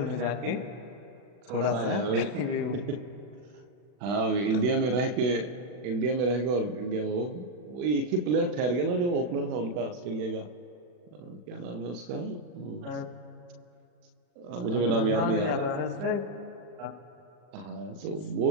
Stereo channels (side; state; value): left; late; 40 ms